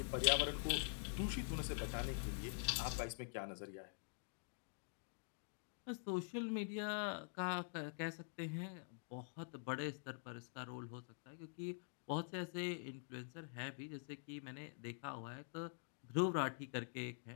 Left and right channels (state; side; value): silent; right; digital silence